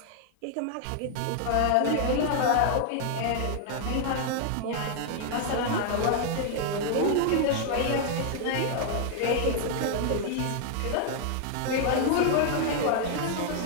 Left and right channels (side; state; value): both; different; correlation 0.00